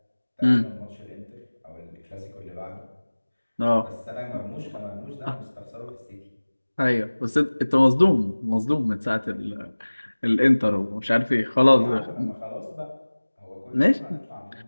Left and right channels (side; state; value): both; inverted; correlation -1.00